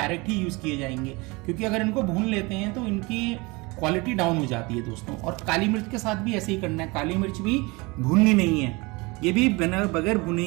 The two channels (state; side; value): quieter; left; 25.5 dB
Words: ही यूज किए जाएंगे क्योंकि अगर इनको भून लेते हैं तो इनकी क्वालिटी डाउन हो जाती है दोस्तों। और काली मिर्च के साथ भी ऐसे ही करना है। काली मिर्च भी भूननी नहीं है, ये भी बगैर भुने